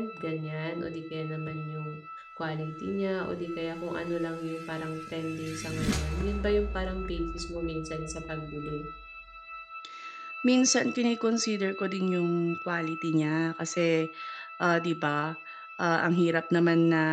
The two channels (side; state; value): both; identical; correlation 1.00